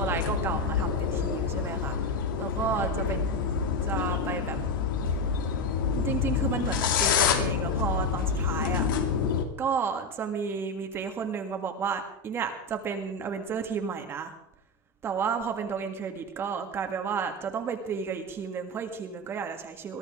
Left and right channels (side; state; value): both; normal; correlation 0.13